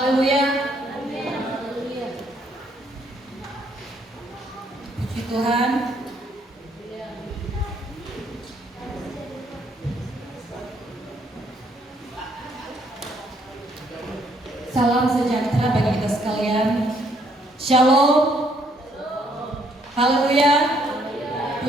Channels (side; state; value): both; normal; correlation 0.69